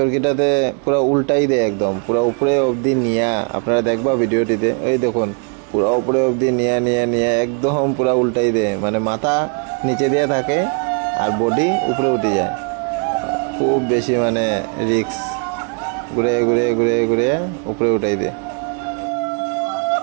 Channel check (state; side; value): quieter; left; 38.8 dB